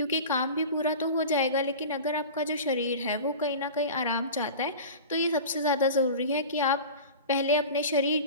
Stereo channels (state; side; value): inverted; both; correlation -0.34